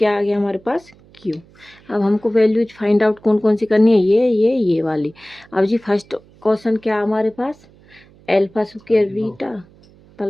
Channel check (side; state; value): right; noise; hum, 27 dB below the sound